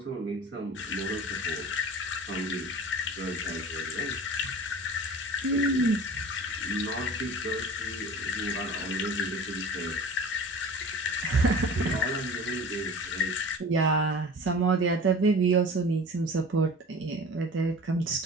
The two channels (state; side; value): normal; both; correlation 0.39